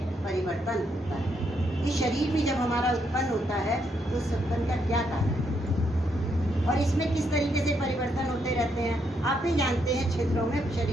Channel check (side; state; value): both; normal; correlation 0.76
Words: परिवर्तन होता है। ये शरीर भी जब हमारा उत्पन्न होता है तो उस उत्पन्न का क्या कारण है और इसमें किस तरीके से परिवर्तन होते रहते हैं। आप ही जानते हैं, क्षेत्रों में